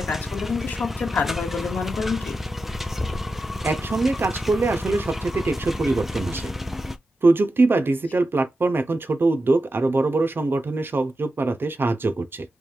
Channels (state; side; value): normal; both; correlation 0.90